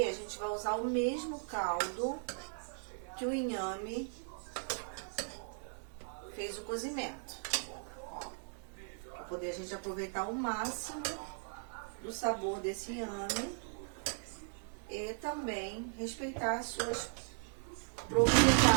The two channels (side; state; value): left; silent; digital silence